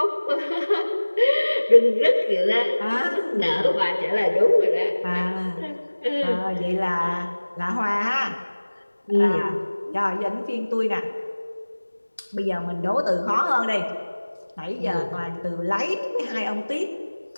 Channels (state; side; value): inverted; both; correlation -1.00